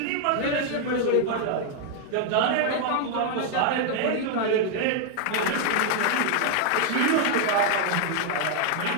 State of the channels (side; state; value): both; different; correlation 0.00